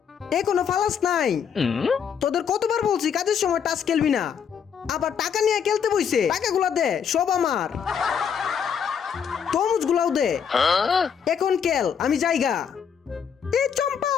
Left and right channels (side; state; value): right; quieter; 7.4 dB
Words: এখনো ফালাস নাই? তোদের কতবার বলছি কাজের সময় টাস খেলবি না, আবার টাকা নিয়ে খেলতে বইছে। টাকাগুলা দে, সব আমার। তরমুজগুলাও দে, এখন খেল, আমি যাইগা। এই চম্পা,